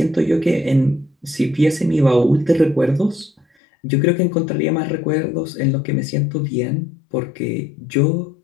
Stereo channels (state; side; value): drops out; right; at 3.5 s